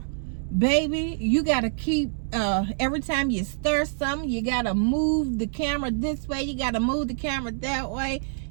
Baby, you got to keep, every time you stir something, you got to move the camera this way. You got to move the camera that way.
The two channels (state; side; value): silent; left; 61 dB below the other